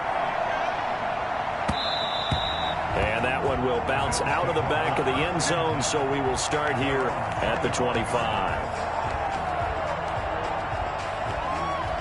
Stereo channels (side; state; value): both; identical; correlation 1.00